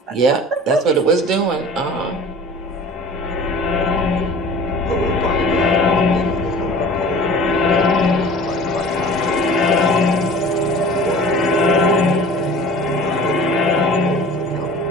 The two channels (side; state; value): both; normal; correlation 0.43